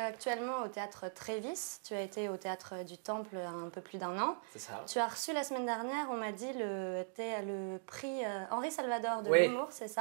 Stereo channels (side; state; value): left; silent; digital silence